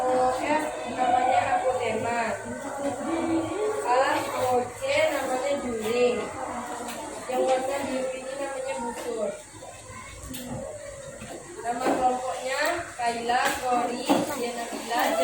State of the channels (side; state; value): left; noise; hum, 27 dB below the sound